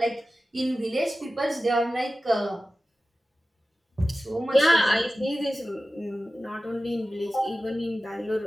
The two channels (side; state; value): both; normal; correlation 0.95